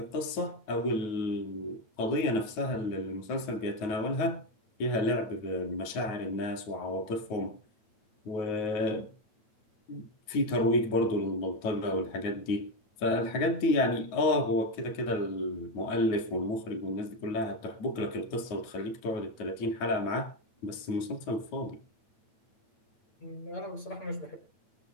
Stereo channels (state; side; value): late; right; 9.4 ms